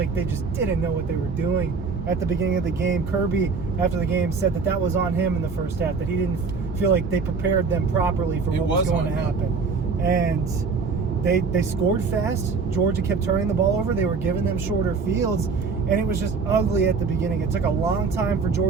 they just didn't know what they were doing at the beginning of the game. Kirby, after the game, said that was on him in the first half, that he didn't feel like they prepared them properly for what was going to happen. And they scored fast. Georgia kept turning the ball over. They were giving them shorter fields, and it was just ugly at the beginning. It took a long time for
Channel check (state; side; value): quieter; left; 4.8 dB